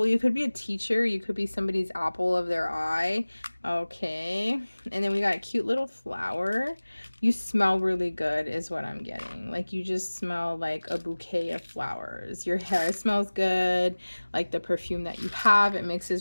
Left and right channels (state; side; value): inverted; both; correlation -1.00